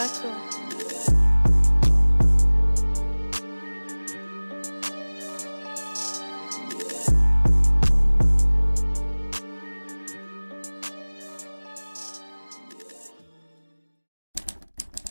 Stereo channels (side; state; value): both; inverted; correlation -1.00